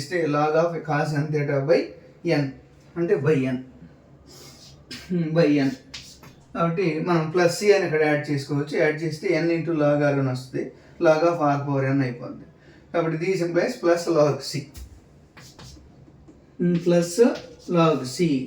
log of cos n theta by n అంటే by n కాబట్టి మనం plus C అని ఇక్కడ add చేసుకోవచ్చు. Add చేస్తే n into log r అని వస్తుంది, log of r power n అయిపోద్ది. కాబట్టి these implies plus log c plus log c.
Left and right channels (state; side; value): identical; both; correlation 1.00